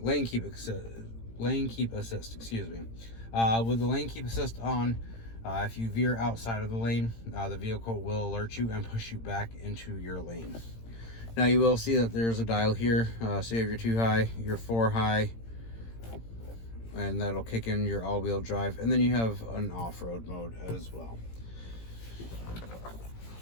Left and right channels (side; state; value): right; late; 18 ms